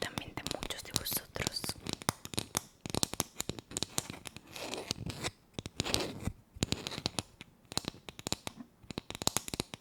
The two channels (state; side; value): identical; both; correlation 1.00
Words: muchos de vosotros.